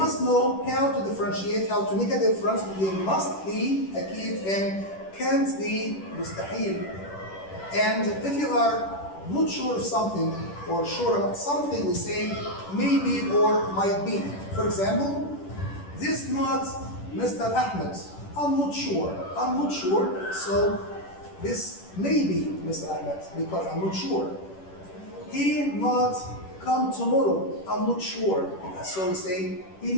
know how to differentiate, how to make a difference between must be أكيد and can't be مستحيل. And if you are not sure of something or sure about something, we say maybe or might be. For example, this not Mr. Ahmed. I'm not sure. So this may be Mr. Ahmed because I'm not sure. He not come tomorrow. I'm not sure. So we say he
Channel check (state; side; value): late; right; 10 ms